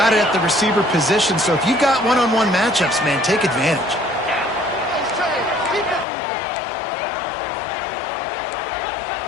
it at the receiver position. So if you've got one-on-one matchups, man, take advantage.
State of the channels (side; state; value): right; drops out; at 6.1 s